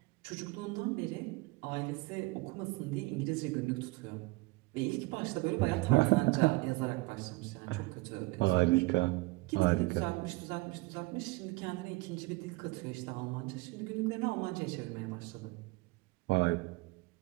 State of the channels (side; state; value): left; quieter; 22.5 dB